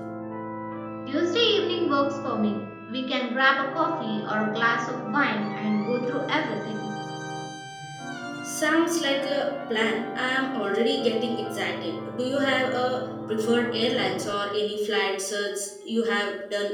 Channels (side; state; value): both; identical; correlation 1.00